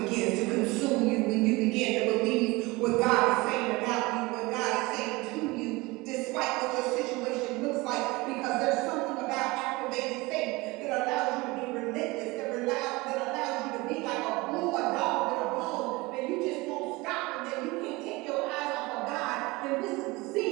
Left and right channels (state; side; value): quieter; left; 22.9 dB